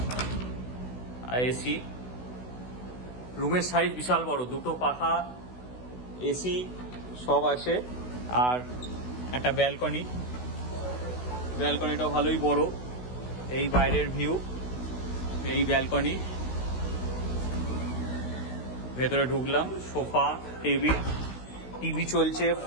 আর এসি। রুমের সাইজ বিশাল বড়, দুটো পাখা, এসি সব আছে। আর একটা ব্যালকনি, ব্যালকনিটাও ভালোই বড়। এই বাইরের ভিউ, এই ব্যালকনি। ভেতরে ঢুকলাম, সোফা, টেবিল, টিভি চলছে,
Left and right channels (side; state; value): right; late; 16 ms